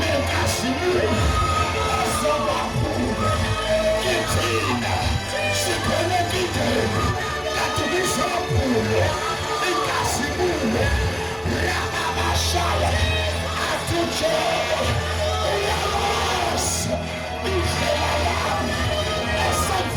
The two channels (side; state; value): both; identical; correlation 1.00